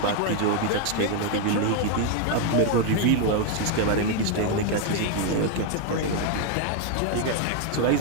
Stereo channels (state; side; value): different; both; correlation 0.01